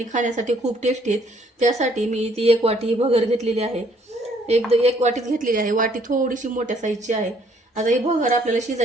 खाण्यासाठी खूप टेस्टी आहेत. त्यासाठी मी ती 1 वाटी भगर घेतलेली आहे. एक वाटीच घेतलेली आहे. वाटी थोडीशी मोठ्या साईजची आहे. आता ही भगर आपल्याला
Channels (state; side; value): normal; both; correlation 0.64